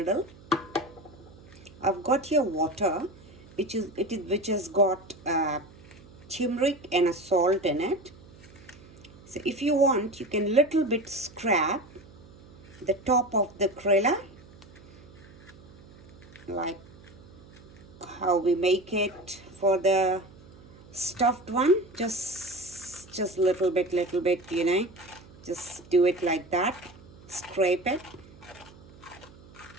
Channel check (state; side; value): noise; right; hum, 22 dB below the sound